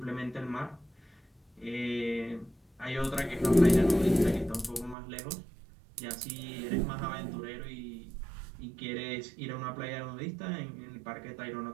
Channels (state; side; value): drops out; left; at 5.0 s